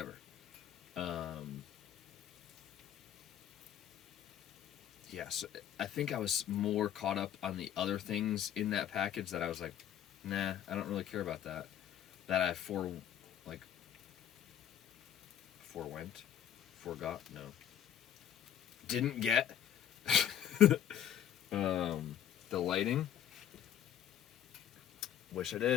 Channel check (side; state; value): right; quieter; 10.2 dB